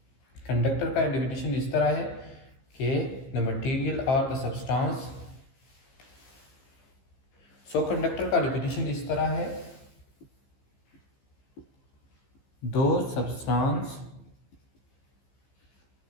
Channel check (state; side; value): late; right; 15 ms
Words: कंडक्टर का डिफिनीशन इस तरह है कि द मटेरियल और द सब्सटेंस। सो कंडक्टर का डिफिनीशन इस तरह है, दो सब्सटेंस,